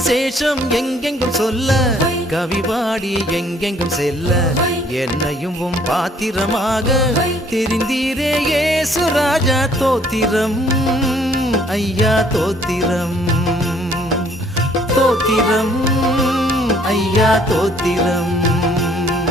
எங்கெங்கும் சொல்ல, கவி பாடி எங்கெங்கும் செல்ல, என்னையும் உம் பாத்திரமாக தெரிந்தீரே இயேசு ராஜா. தோத்திரம் ஐயா தோத்திரம், தோத்திரம் ஐயா தோத்திரம்,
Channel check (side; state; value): both; normal; correlation 0.61